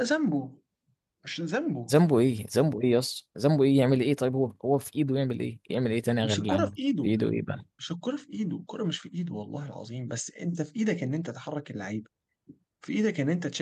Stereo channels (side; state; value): both; identical; correlation 1.00